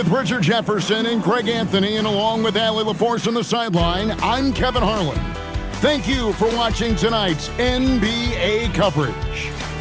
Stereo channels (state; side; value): identical; both; correlation 1.00